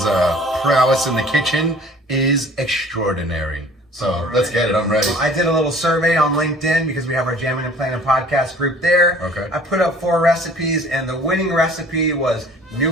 prowess in the kitchen is extraordinary. So let's get it. I'm ready. I did a little survey on LinkedIn because we have our Jamming and Planning podcast group there. Okay. I put up 4 recipes, and the winning recipe was New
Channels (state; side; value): normal; both; correlation 0.50